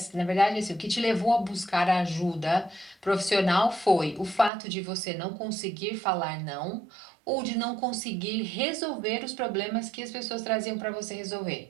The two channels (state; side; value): drops out; left; at 4.5 s